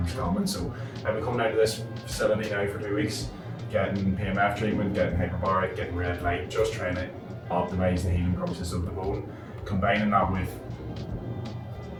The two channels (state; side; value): identical; both; correlation 1.00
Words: Fermanagh. So I've been coming out of this facility now for 2 weeks, getting PEMF treatment, getting hyperbaric, getting red light, just trying to optimise the healing process of the bone, combining that with